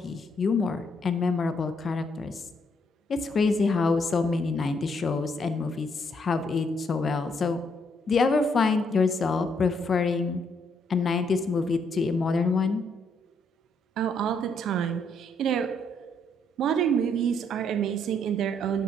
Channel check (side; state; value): both; normal; correlation 0.72